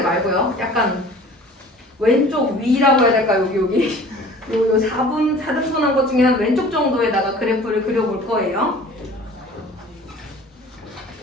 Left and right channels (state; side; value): normal; both; correlation 0.46